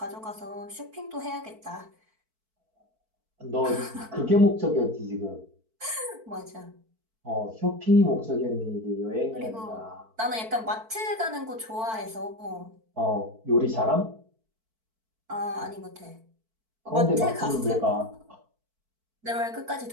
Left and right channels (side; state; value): left; late; 4.5 ms